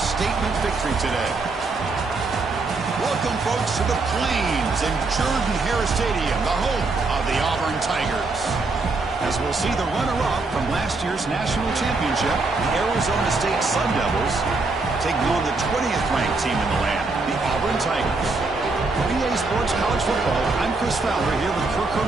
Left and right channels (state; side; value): quieter; left; 3.6 dB